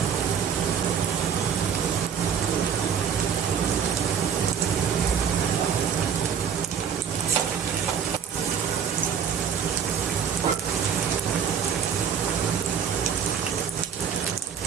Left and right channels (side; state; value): left; quieter; 7.6 dB